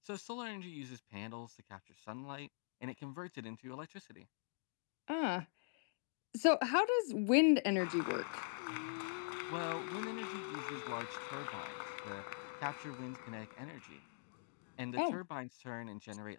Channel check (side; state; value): right; silent; digital silence